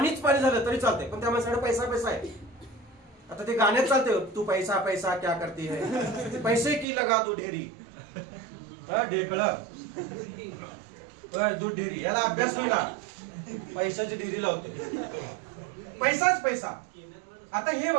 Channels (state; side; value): drops out; left; at 6.9 s